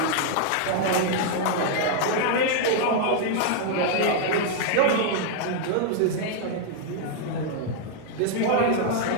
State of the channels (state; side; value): different; both; correlation -0.01